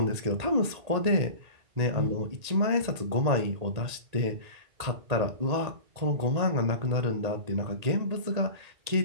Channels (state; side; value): late; left; 1.8 ms